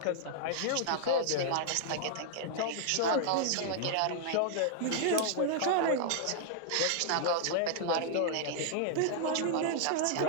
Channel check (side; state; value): both; different; correlation -0.01